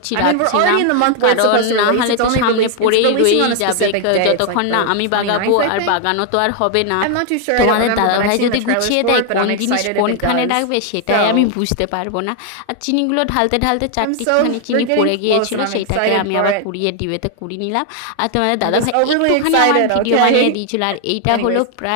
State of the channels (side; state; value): both; different; correlation 0.00